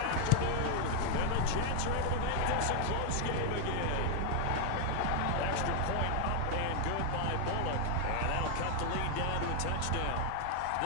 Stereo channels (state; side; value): different; both; correlation 0.00